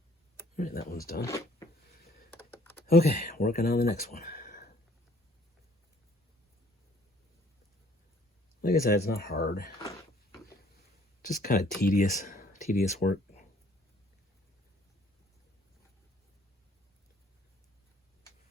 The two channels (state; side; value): normal; both; correlation 0.59